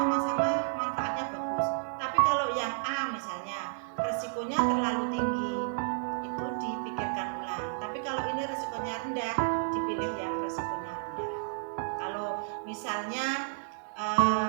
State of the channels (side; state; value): left; silent; digital silence